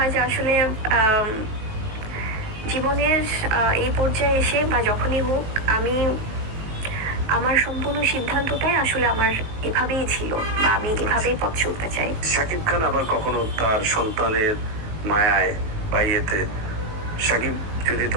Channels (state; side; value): late; left; 19 ms